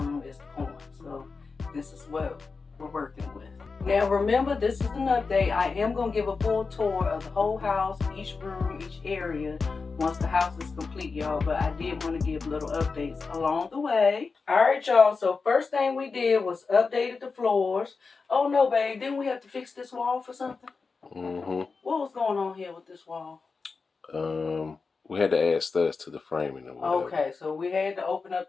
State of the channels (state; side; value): quieter; right; 4.6 dB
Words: as the corner, so this is what we're working with. Now remember, this is an update. I am going to give a full tour of the whole house, each room, each area, once the house is complete, y'all. But I did want to give little updates along the way. Alright, y'all. So first thing we did was updated the floors. Oh no, babe. Didn't we have to fix this wall for something? Mm-hmm. What was going on here with this wall? We had to add studs to the framing or whatever. Okay, so we had to open